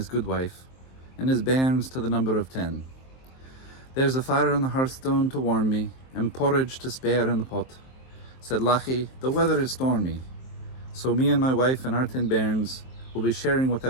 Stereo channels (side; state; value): right; late; 23 ms